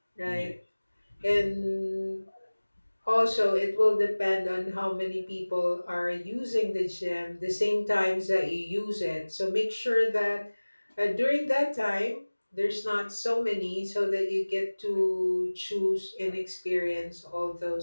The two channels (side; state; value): both; inverted; correlation -1.00